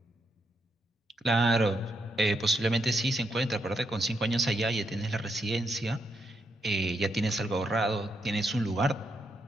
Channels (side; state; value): both; normal; correlation 0.80